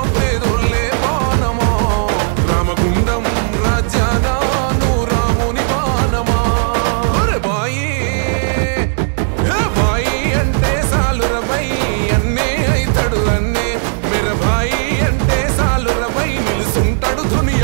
పేదోళ్ళే బాణమా రామగుండం రాజ్యానా నువ్వు రాముని బాణమా బాయి భాయి అంటే సాలురబై అన్నే అయితడు అన్నే మేర భాయి అంటే సాలురబై నిలుసుంటాడు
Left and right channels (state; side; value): silent; left; digital silence